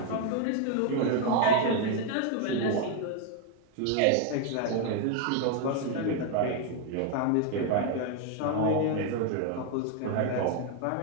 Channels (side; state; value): both; different; correlation 0.01